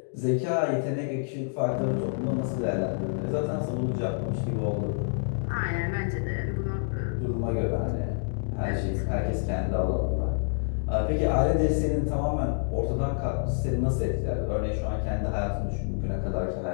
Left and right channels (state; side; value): silent; right; digital silence